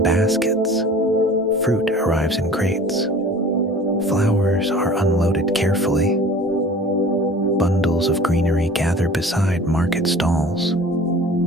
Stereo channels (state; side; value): normal; both; correlation 0.44